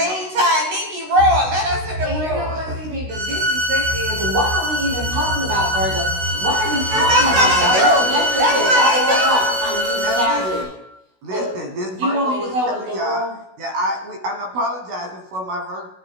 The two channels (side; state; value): left; late; 16 ms